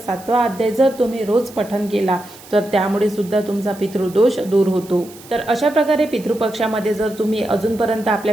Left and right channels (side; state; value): right; noise; hiss, 20 dB below the sound